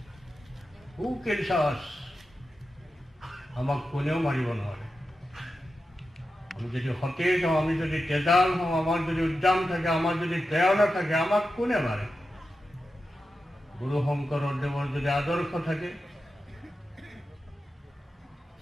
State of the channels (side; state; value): both; normal; correlation 0.91